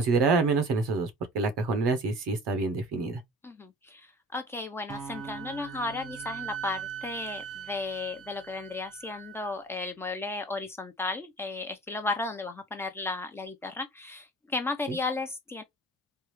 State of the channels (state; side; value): normal; both; correlation 0.44